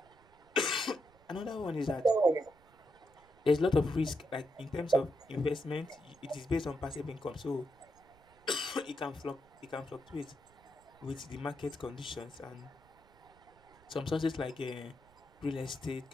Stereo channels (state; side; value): noise; right; rumble, 28 dB below the sound